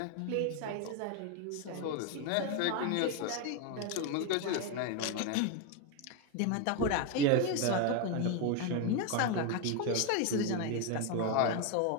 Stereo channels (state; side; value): different; both; correlation 0.02